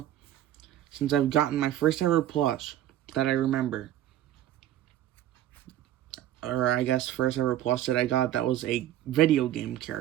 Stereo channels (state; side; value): quieter; left; 12.7 dB